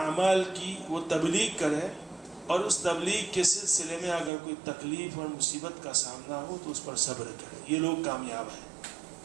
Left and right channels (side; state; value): left; drops out; at 4.3 s